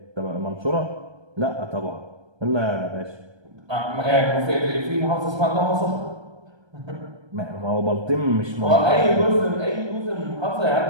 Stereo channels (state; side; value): late; left; 1.3 ms